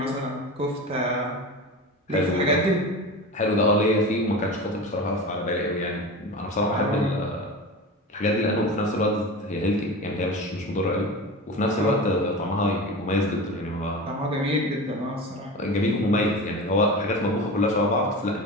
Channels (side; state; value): both; normal; correlation 0.29